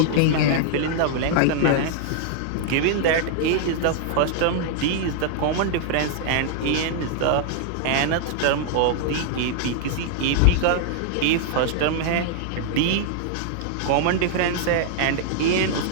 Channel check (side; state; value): both; different; correlation -0.01